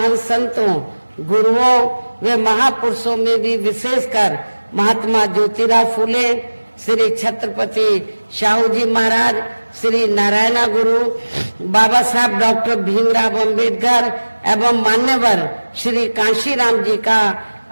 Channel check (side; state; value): both; inverted; correlation -1.00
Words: संतों, गुरुओं व महापुरुषों में भी विशेषकर महात्मा ज्योतिराव फूले, श्री छत्रपति शाहू जी महाराज, श्री नारायण गुरु, बाबा साहब डॉक्टर भीमराव अंबेडकर एवं मान्यवर श्री कांशीराम जी का